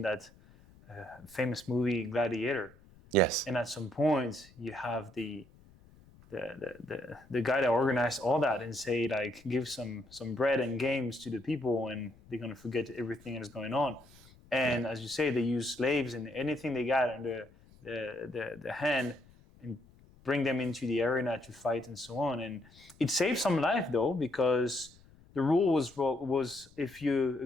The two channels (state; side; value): noise; left; rumble, 25 dB below the sound